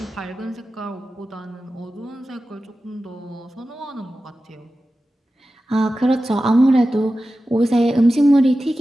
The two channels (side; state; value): both; normal; correlation 0.94